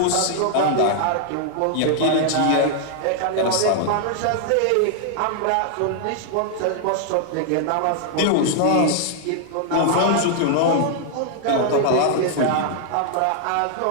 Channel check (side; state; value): both; different; correlation 0.00